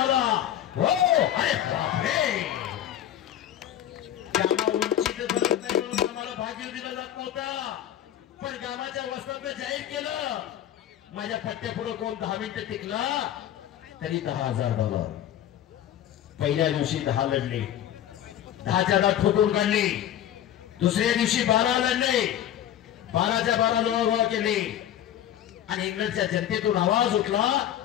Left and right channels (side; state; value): right; quieter; 11.3 dB